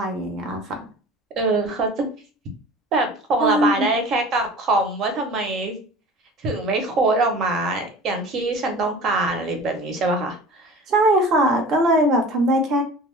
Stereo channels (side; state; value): both; normal; correlation 0.40